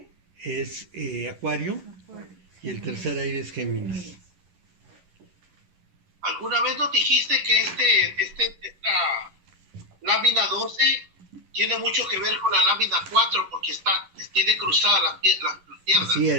Es Acuario y el tercer aire es Géminis. ¿Alguna vez nos dijiste que esta lámina 12 tiene mucho que ver con la lámina 4 porque tiene cruzada las piernas? Así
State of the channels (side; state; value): left; late; 11 ms